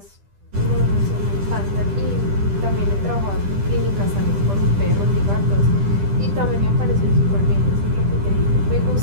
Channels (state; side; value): late; left; 10 ms